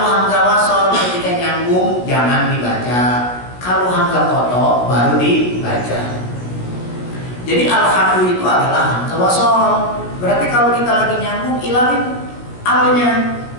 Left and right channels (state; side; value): late; right; 17 ms